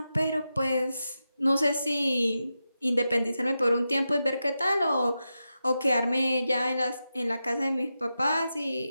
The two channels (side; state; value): both; inverted; correlation -0.90